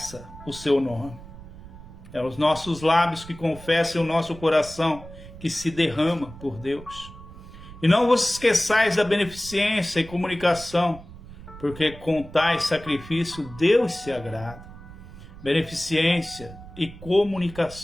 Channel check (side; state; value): right; noise; rumble, 16 dB below the sound